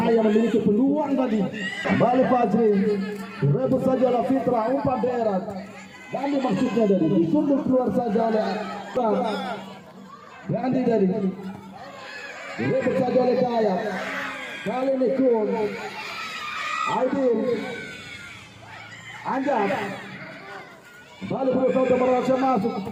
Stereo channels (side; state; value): both; identical; correlation 1.00